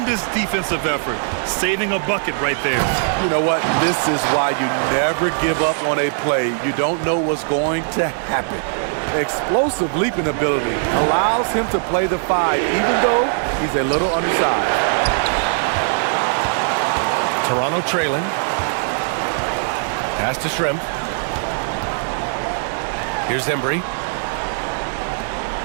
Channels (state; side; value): silent; left; digital silence